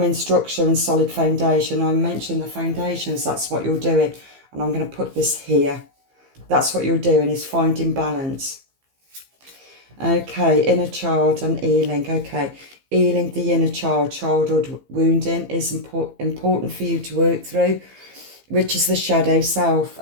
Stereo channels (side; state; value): left; late; 15 ms